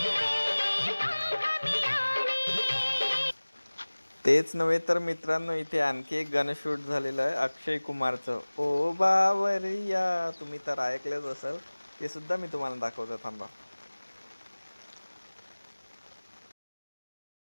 तेच नव्हे तर मित्रांनो, इथे आणखी एक गाणं शूट झालेलं आहे अक्षय कुमारचं, ओ बावरिया. तुम्ही तर ऐकलेच असेल, ते सुद्धा मी तुम्हाला दाखवतो, थांबा.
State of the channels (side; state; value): both; inverted; correlation -1.00